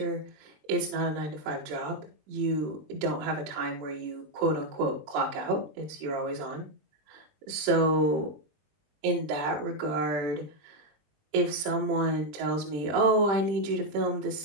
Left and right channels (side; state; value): left; late; 20 ms